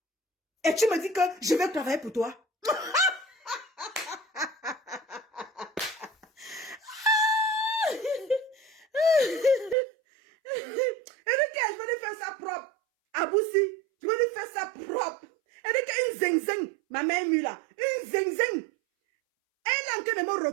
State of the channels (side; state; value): left; drops out; at 9.8 s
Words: Et tu me dis que je vais travailler pour toi. Et je vais lui faire ça propre. Aboussi, je vais lui faire ça propre. Et une zing-zing, ma mère mue là. Une zing-zing. Elle est en train de me